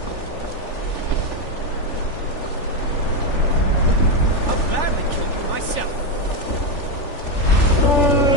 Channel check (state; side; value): late; right; 3.4 ms